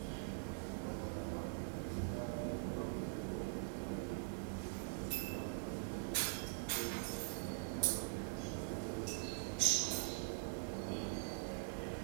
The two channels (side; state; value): left; silent; digital silence